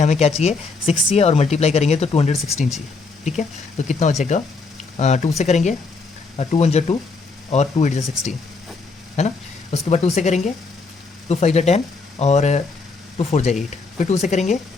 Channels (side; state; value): right; quieter; 4.2 dB